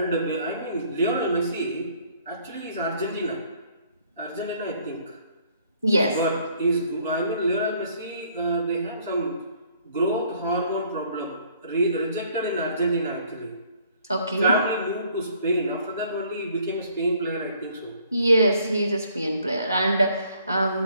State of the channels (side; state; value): both; inverted; correlation -0.62